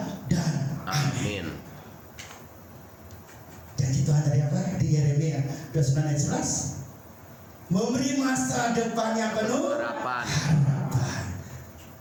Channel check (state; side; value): identical; both; correlation 1.00